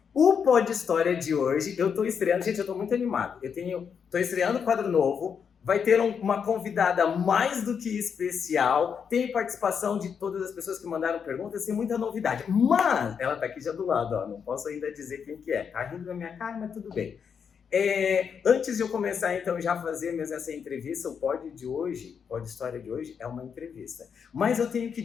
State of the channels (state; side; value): quieter; right; 6.9 dB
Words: O Pod História de hoje, eu tô estreando, gente, eu tô muito animado. Tô estreando um quadro novo, vai ter uma convidada mais do que especial, tem participação de todas as pessoas que mandaram perguntas, tem muita novidade. Mas, ela tá aqui já do lado, ó, não posso ainda dizer quem que é. Tá rindo na minha cara, mas tudo bem. Antes de eu começar, então, já fazer mesmo essa entrevista, o Pod História de hoje é uma entrevista. Mas eu tenho que